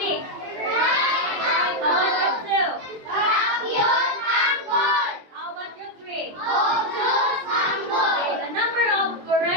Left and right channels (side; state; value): left; late; 23 ms